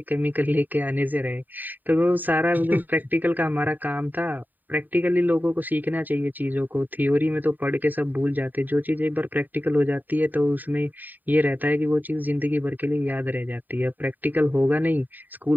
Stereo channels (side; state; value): left; late; 0.088 ms